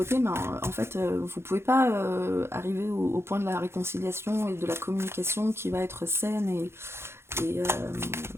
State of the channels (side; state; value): left; late; 0.12 ms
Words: en fait, vous pouvez pas arriver au point de la réconciliation et de la communication qui va être saine et